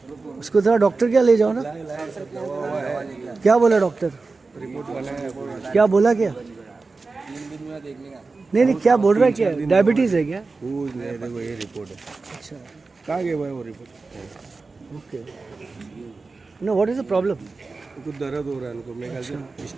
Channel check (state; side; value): quieter; left; 3.9 dB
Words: उसको थोड़ा डॉक्टर क्या ले जाओ ना। क्या बोला डॉक्टर? क्या बोला क्या? नहीं, क्या बोल रहा है? क्या डायबिटीज है क्या? देखो ये रिपोर्ट है। अच्छा, कहाँ गया भाई वो report? Okay. No, what is the problem? उनको दर्द हो रहा है उनको, मेरे ख्याल से